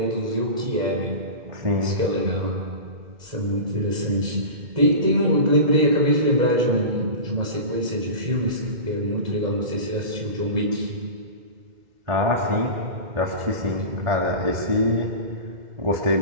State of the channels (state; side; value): late; left; 2.1 ms